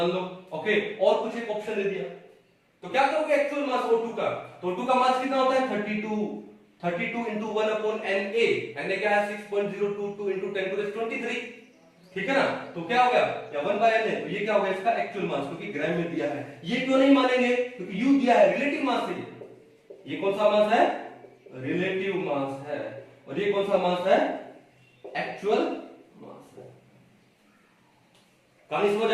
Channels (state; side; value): identical; both; correlation 1.00